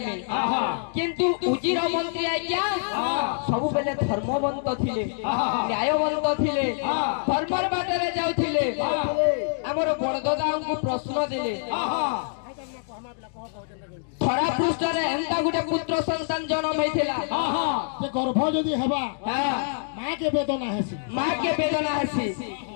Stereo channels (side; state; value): right; silent; digital silence